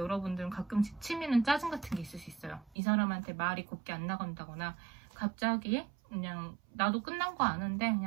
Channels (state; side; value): drops out; left; at 2.8 s